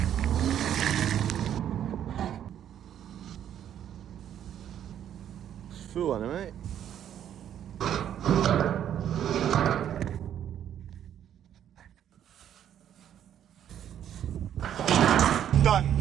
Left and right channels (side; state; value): left; quieter; 10.1 dB